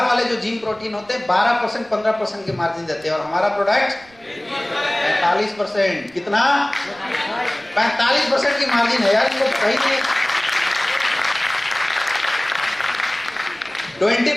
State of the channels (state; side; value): noise; right; rumble, 29 dB below the sound